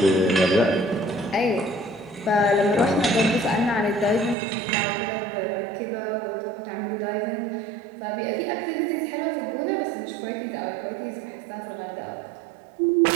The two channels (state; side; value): drops out; left; at 4.4 s